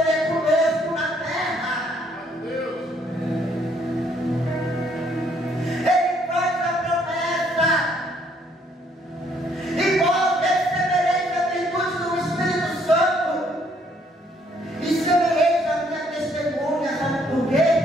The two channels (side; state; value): both; normal; correlation 0.67